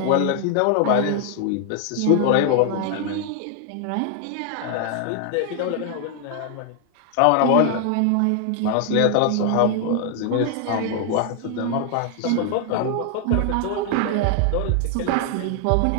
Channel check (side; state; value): both; different; correlation 0.00